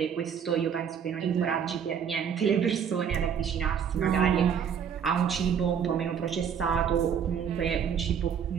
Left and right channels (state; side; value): quieter; left; 7.7 dB